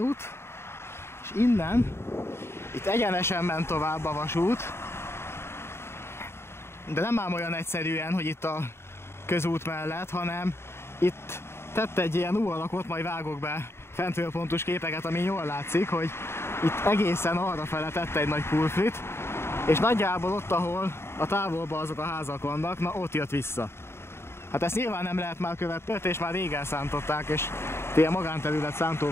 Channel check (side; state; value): right; late; 0.12 ms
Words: és innen, itt egyenesen ment tovább a vasút, De nem ám olyan egyszerűen, hogy itt a közút mellett, hanem itt tett egy ilyen U alakot, majd vágok be fentről pontos képeket, ami jól látszik, hogy itt egészen arrafele tette egy nagy pulfrit, és nagyjából ott, ahol a távolban azok a házak vannak, na ott jött vissza. Hát ezt nyilván nem lehet már követni, és már rég elszántották, és ilyen magánterület,